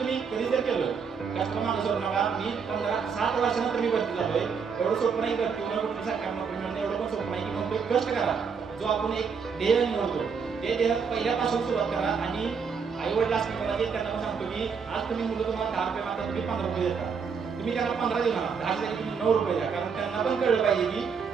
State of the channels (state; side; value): quieter; left; 6.0 dB